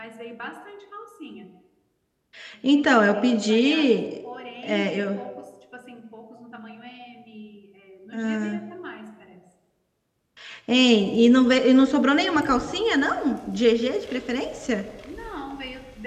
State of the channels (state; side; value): identical; both; correlation 1.00